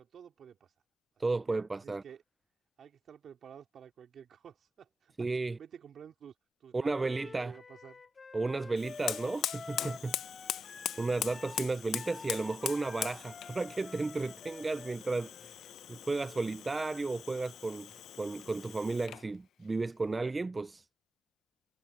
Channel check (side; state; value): both; normal; correlation 0.91